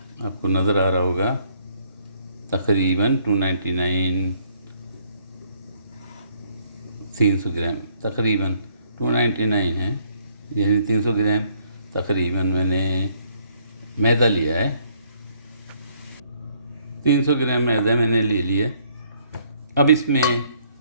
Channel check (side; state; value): both; inverted; correlation -0.66